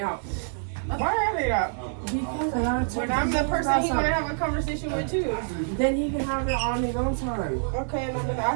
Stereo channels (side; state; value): left; silent; 61 dB below the other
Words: out. Why are they out? Because I gotta talk When to I'm the him person about he wanna something. have a conversation with too. Then he can have it on his own time. Okay, and I've been